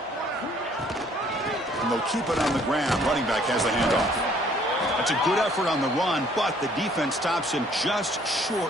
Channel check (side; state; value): both; normal; correlation 0.60